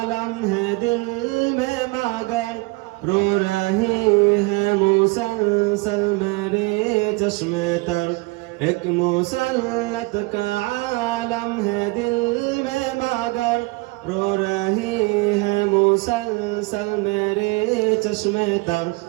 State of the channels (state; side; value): quieter; left; 25.1 dB